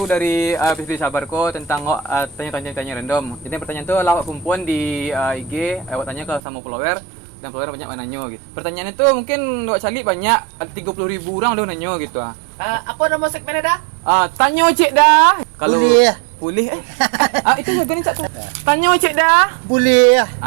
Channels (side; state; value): left; drops out; at 6.4 s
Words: dari episode Sabarko tentang tanya-tanya random. Jadi pertanyaan itu lawak perempuan di IG, awak tanya ke sama follower dan follower banyak yang nanya gitu. Pertanyaan itu mungkin awak cari banyak, ada 30.000 orang udah nanya gitu. Apa nama segmennya dah? Tanya cik dah. Kalau boleh itu harga ni cak tu. Tanya cik dah. Boleh.